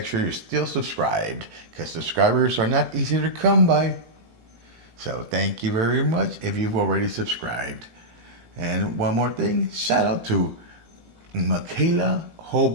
sure you're still subscribed, because subscribers are not easy to come by. So thank you very much if you've already subscribed. And one more thing, shout out to Michaela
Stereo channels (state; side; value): late; left; 18 ms